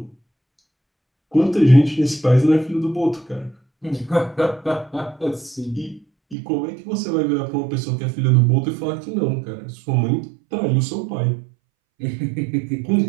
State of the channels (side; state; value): left; drops out; at 6.4 s